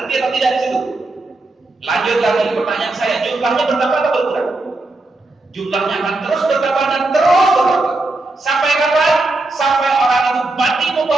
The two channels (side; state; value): left; quieter; 3.0 dB